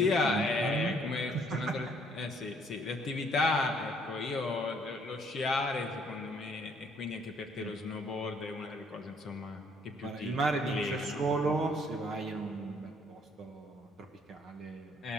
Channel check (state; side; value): normal; both; correlation 0.65